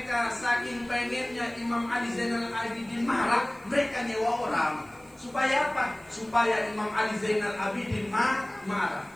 saking pengennya Imam Ali Zainal Abidin marah, mereka nyewa orang. Supaya apa? Supaya Imam Ali Zainal Abidin marah.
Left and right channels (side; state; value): right; noise; hiss, 28 dB below the sound